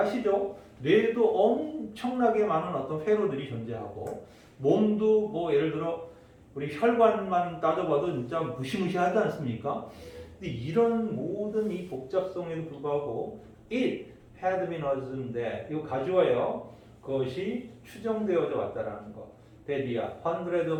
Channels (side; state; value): both; identical; correlation 1.00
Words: 뇌에도 엄청나게 많은 어떤 회로들이 존재하고, 몸도 뭐 예를 들어 우리 혈관만 따져봐도 진짜 무시무시하지 않습니까? 근데 이런 모든 이 복잡성에도 불구하고 it had been assumed that, 이거 가져와요. 그것이 추정되어져 왔다라는 거. that이야, hundreds